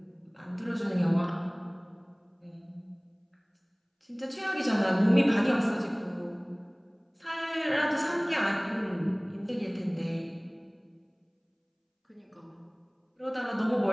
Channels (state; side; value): identical; both; correlation 1.00